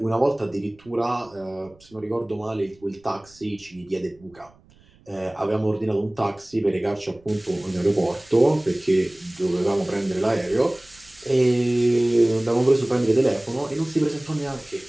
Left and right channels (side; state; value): right; noise; rumble, 29 dB below the sound